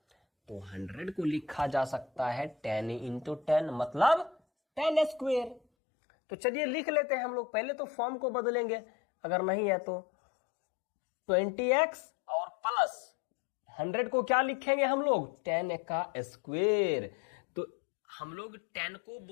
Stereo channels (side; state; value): right; drops out; at 5.6 s